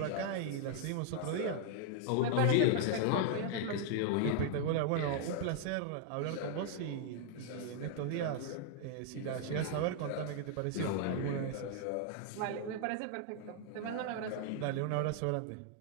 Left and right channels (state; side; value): different; both; correlation 0.00